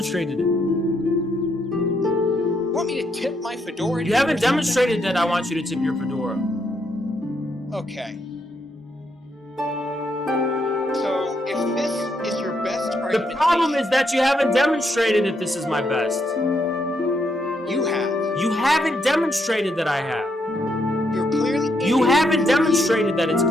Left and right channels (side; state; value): both; normal; correlation 0.77